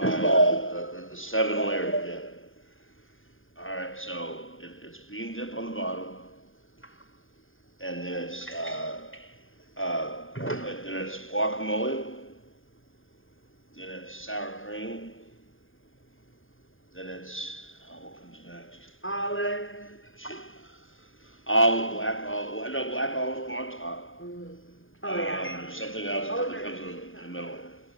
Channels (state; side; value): late; right; 0.59 ms